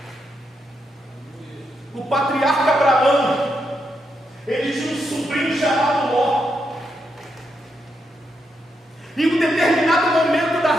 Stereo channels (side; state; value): both; normal; correlation 0.82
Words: O patriarca Abraão, ele tinha um sobrinho chamado Ló. Em um determinado momento